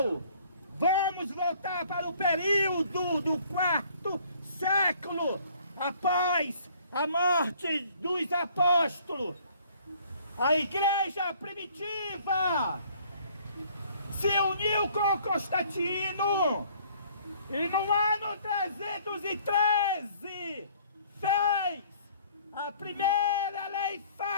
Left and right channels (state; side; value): inverted; both; correlation -0.58